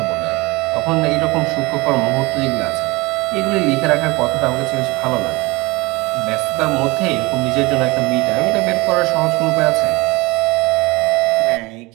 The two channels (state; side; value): quieter; left; 23.3 dB